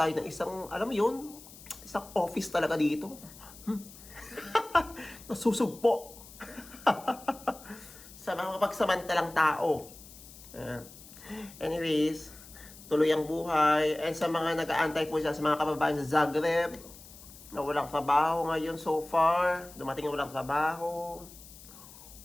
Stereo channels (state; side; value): noise; left; hiss, 19 dB below the sound